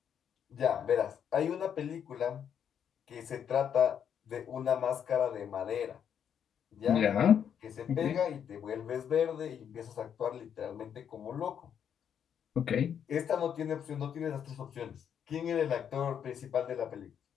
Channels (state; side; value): quieter; right; 8.4 dB